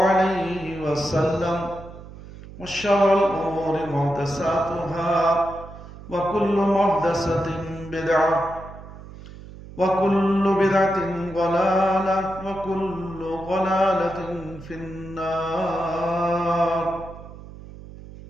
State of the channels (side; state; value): right; noise; hum, 16 dB below the sound